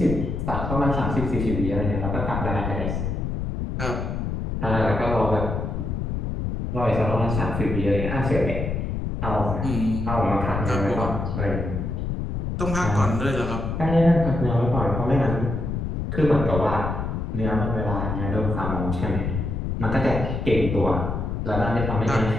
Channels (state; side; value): noise; left; rumble, 3 dB below the sound